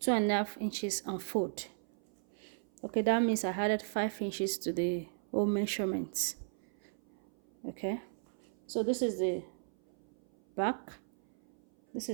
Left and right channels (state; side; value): silent; left; 54 dB below the other